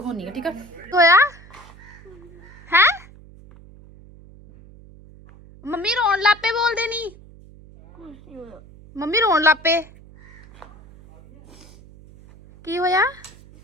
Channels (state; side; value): noise; right; hum, 22 dB below the sound